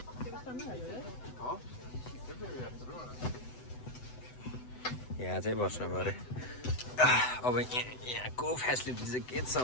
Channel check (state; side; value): late; right; 7.9 ms